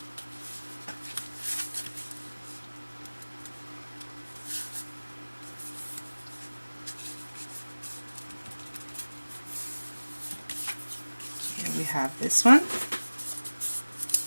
We have this one.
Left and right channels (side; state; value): both; inverted; correlation -1.00